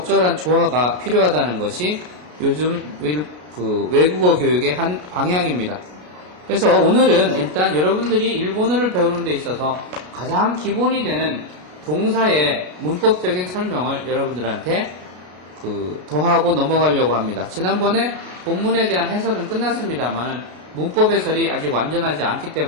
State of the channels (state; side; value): late; left; 33 ms